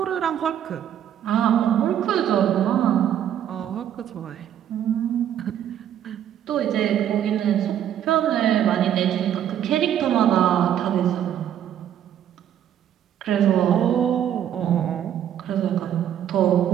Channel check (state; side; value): quieter; left; 10.2 dB